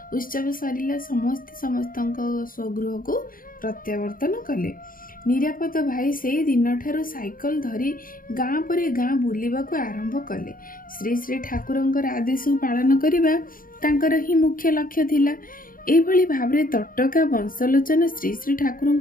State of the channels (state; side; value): late; right; 0.41 ms